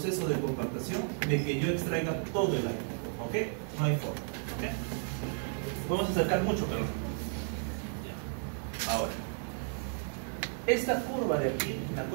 de compactación, de que yo extraiga todo el aire. ¿Ok? No hay forma. ¿Ok? Podemos acercar mucho, pero ya. Ahora, esta curva de aquí, la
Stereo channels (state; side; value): silent; left; 56 dB below the other